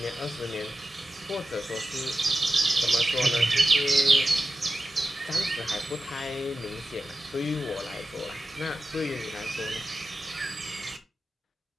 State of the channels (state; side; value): normal; both; correlation 0.92